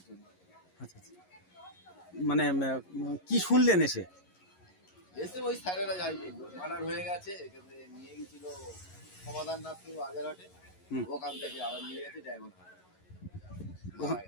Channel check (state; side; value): late; right; 11 ms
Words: জন্য। আচ্ছা আচ্ছা, মানে কি শুনলেন এসে? এসে ওই স্যারেরা যাই বললো মার্ডার হয়ে গেছে, এখানে নিয়ে গেছিল সমাধান নাথ আগের হাটে, ওখান থেকে আবার নিয়ে গেছে ডায়মন্ড হারবার।